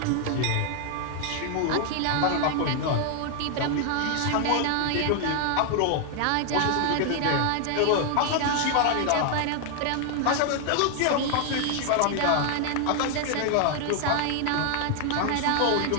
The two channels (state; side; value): different; both; correlation 0.00